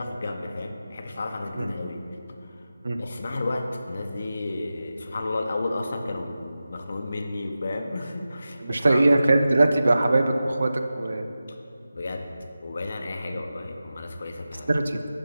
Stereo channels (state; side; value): inverted; both; correlation -0.93